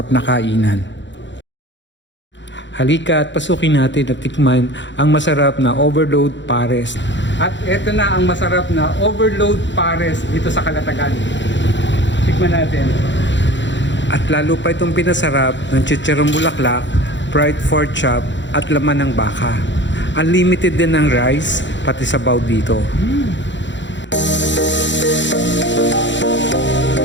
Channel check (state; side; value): late; right; 0.53 ms